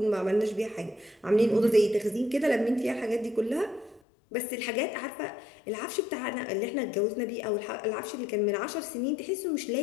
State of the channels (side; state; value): right; drops out; at 4.0 s